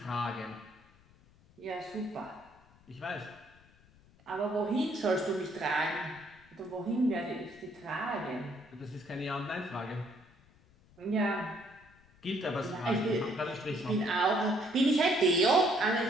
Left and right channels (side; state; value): left; noise; rumble, 28 dB below the sound